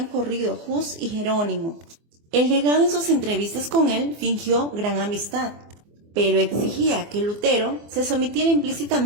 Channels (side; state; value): left; late; 24 ms